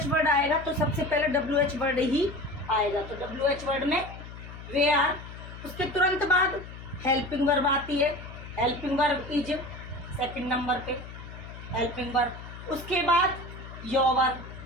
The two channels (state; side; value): noise; left; hum, 13 dB below the sound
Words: वर्ड आएगा तो सबसे पहले WH वर्ड ही आएगा। तो WH वर्ड में वेयर, उसके तुरंत बाद हेल्पिंग वर्ब आती है। Helping verb is 2nd number पे हेल्पिंग वर्ब। उसके बाद योर,